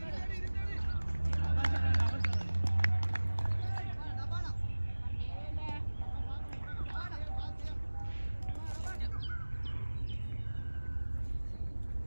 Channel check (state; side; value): inverted; both; correlation -1.00